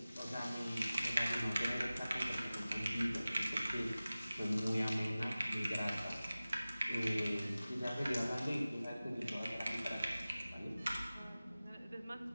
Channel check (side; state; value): both; inverted; correlation -0.97